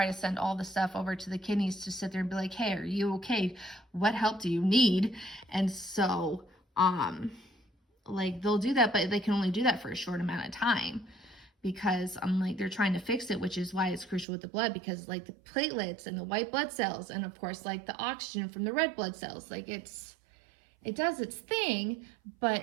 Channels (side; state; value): left; drops out; at 14.2 s